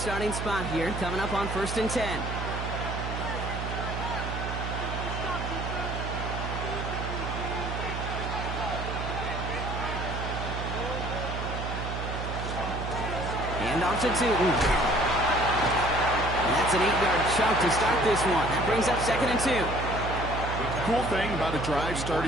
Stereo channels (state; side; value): noise; right; hum, 4 dB below the sound